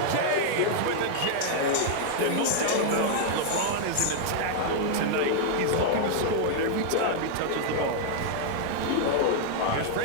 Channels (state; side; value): different; both; correlation -0.01